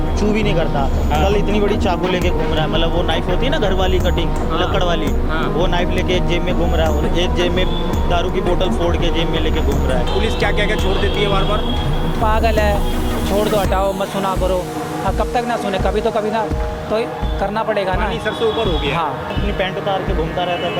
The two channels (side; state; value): both; identical; correlation 1.00